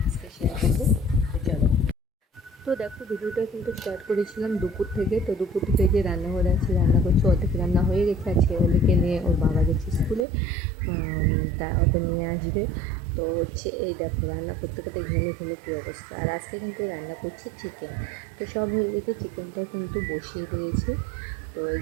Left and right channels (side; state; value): left; drops out; at 10.2 s